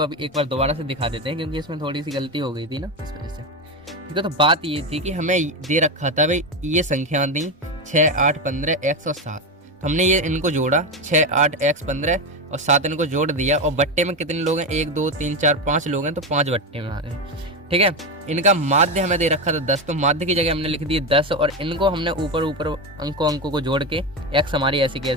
अभी एक बार दोबारा से दिखा देते हैं क्योंकि इसमें थोड़ी सी गलती हो गई थी ना, इस वजह से। ठीक है, तो बात ये थी कि हमें दे रखा था भाई, ये संख्या दी 6 8 15 x और 7, हमने ये इनको जोड़ा 6 8 x 15 और 7 इनको जोड़ दिया, और बट्टे में कितने लोग हैं 1 2 3 4 5 लोग हैं, तो 5 बट्टे में आ गए। ठीक है, इनका माध्य हमें दे रखा था 10, तो माध्य की जगह हमने लिख दिए 10, और इनको हमने ऊपर अंकों को जोड़ के x हमारी ऐसी की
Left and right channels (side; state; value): both; normal; correlation 0.14